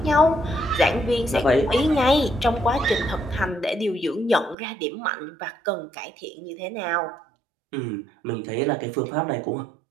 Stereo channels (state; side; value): drops out; left; at 4.5 s